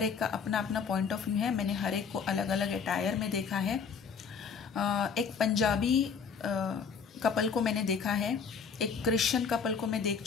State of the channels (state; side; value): quieter; right; 6.0 dB